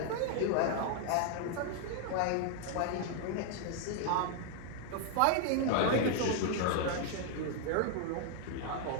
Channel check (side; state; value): both; different; correlation 0.00